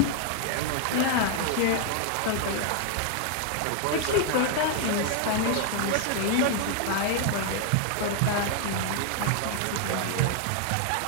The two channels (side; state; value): both; different; correlation 0.00